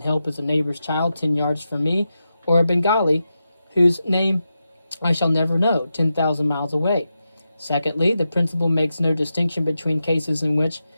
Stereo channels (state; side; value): inverted; both; correlation -0.89